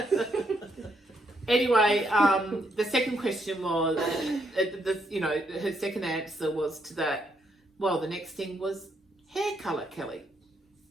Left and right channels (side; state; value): both; normal; correlation 0.75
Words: Anyway, the second question was, her second answer was to that. Well, the next thing was hair colour, Kelly.